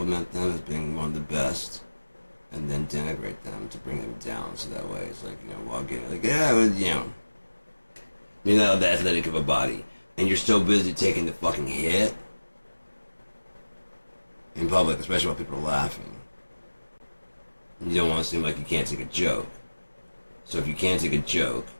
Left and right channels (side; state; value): both; inverted; correlation -1.00